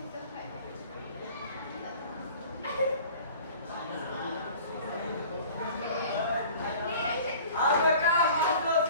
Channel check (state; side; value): inverted; both; correlation -0.45